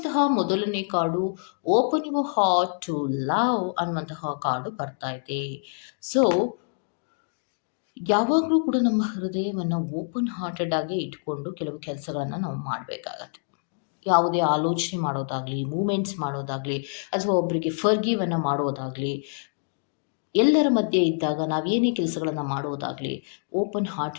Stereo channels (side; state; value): right; silent; digital silence